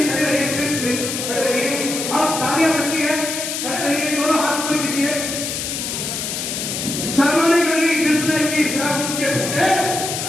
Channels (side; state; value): left; noise; hiss, 4 dB below the sound